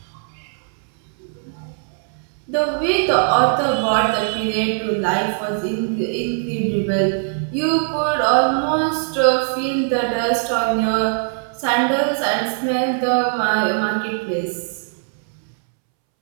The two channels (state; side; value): silent; left; 65 dB below the other